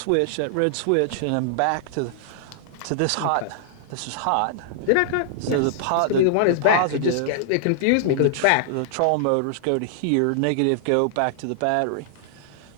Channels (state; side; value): different; both; correlation -0.01